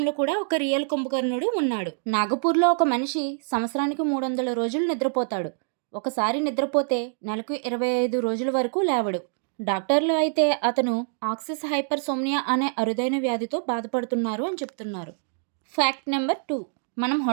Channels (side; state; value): left; silent; digital silence